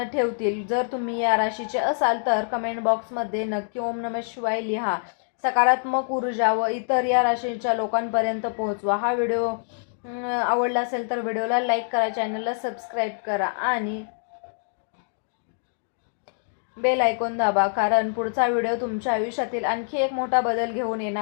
ठेवतील. जर तुम्ही या राशीचे असाल तर कमेंट बॉक्समध्ये नक्की ओम नमः शिवाय लिहा. सकारात्मक ऊर्जा व इतर या राशीच्या लोकांपर्यंत पोहोचवा. हा व्हिडिओ आवडला असेल तर व्हिडिओला लाईक करा, चॅनलला सबस्क्राईब करा आणि बेल आयकॉन दाबा, कारण पुढचा व्हिडिओ तुमच्या आयुष्यातील आणखी एक मोठा बदल घेऊन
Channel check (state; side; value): silent; right; digital silence